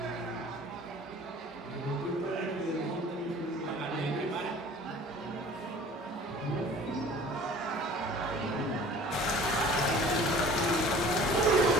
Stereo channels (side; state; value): both; normal; correlation 0.47